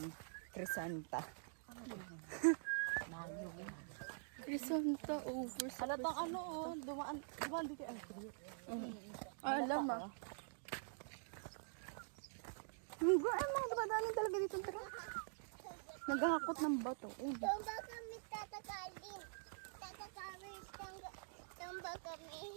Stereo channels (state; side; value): silent; left; digital silence